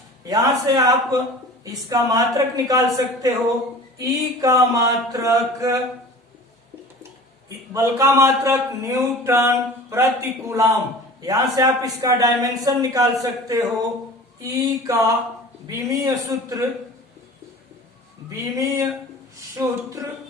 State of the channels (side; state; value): both; normal; correlation 0.41